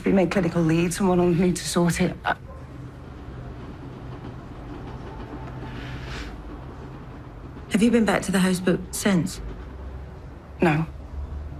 been made clinical lead. Someone will need to sort it. Have you been back to the houseboat since? No.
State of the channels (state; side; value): identical; both; correlation 1.00